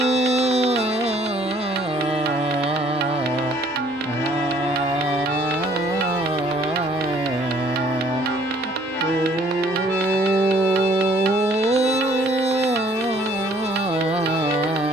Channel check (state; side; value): normal; both; correlation 0.60